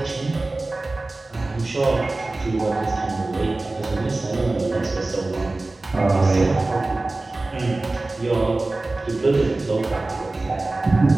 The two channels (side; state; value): left; quieter; 3.1 dB